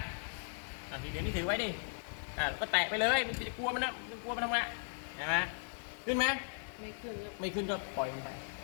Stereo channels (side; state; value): right; silent; digital silence